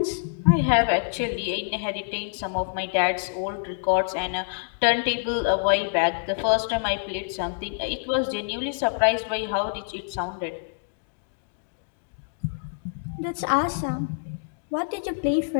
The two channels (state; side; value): silent; right; digital silence